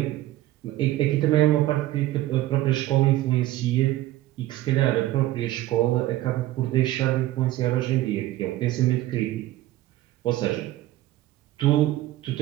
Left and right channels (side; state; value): left; quieter; 15.4 dB